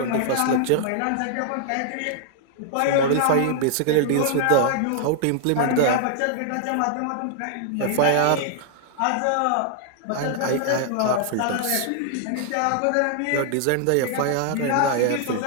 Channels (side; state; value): both; different; correlation 0.00